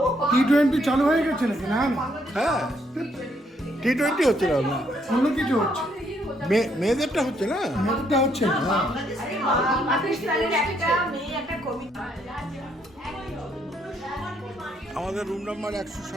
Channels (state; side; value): normal; both; correlation 0.72